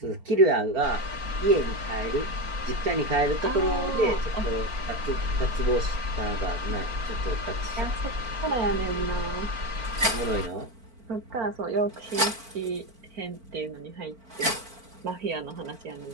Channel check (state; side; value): late; left; 4.4 ms